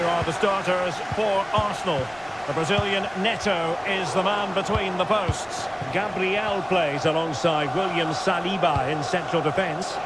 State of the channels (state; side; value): noise; left; rumble, 25 dB below the sound